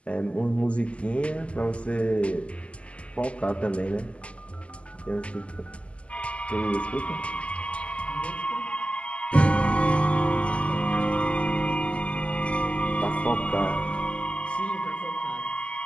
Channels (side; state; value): right; late; 0.058 ms